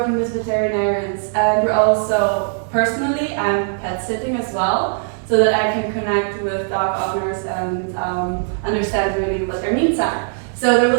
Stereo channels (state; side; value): silent; left; 66 dB below the other